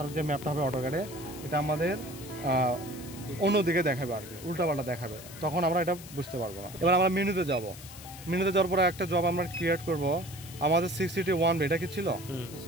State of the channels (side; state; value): left; noise; hiss, 16 dB below the sound